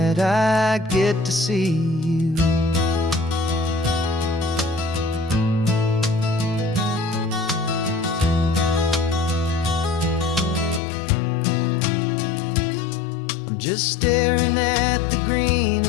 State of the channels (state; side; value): drops out; right; at 10.8 s